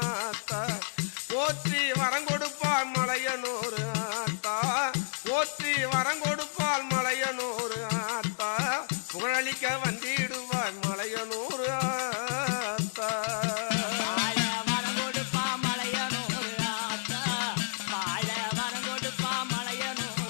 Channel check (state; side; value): silent; right; digital silence